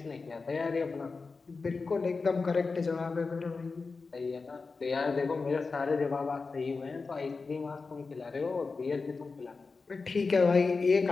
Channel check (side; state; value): right; quieter; 4.3 dB